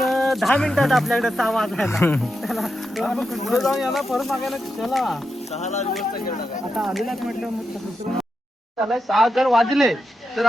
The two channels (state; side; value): normal; both; correlation 0.87